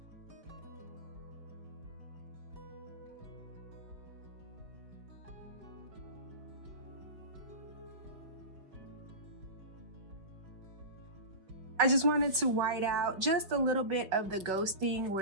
I just wanted to white out just a little bit of the ghosting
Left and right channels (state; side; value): late; left; 5.3 ms